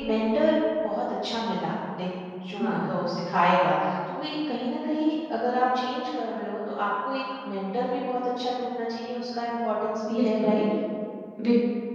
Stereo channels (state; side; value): identical; both; correlation 1.00